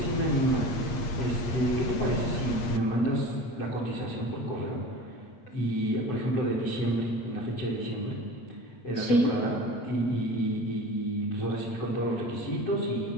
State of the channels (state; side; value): late; right; 8.5 ms